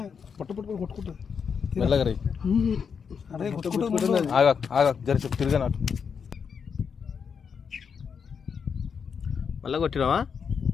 పట్టు పట్టు కొట్టుకుంటుంది మెల్లగా రీ. ఆగా ఆగా జరిసి తిరిగా నాకు మళ్ళా కొట్టినావా?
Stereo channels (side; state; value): right; quieter; 6.5 dB